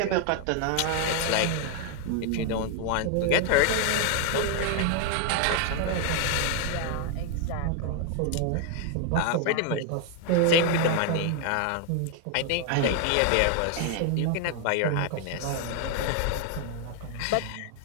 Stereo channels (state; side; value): different; both; correlation 0.00